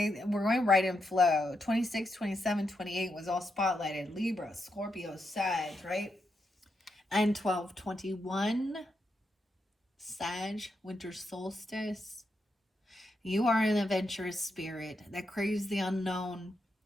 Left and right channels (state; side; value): normal; both; correlation 0.83